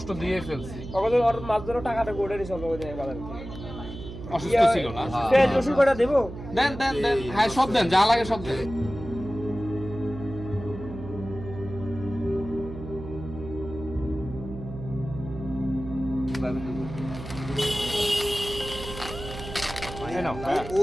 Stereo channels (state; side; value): noise; right; hum, 11 dB below the sound